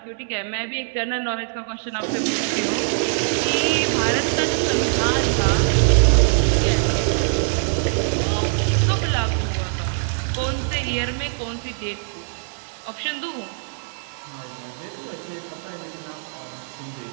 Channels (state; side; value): silent; left; digital silence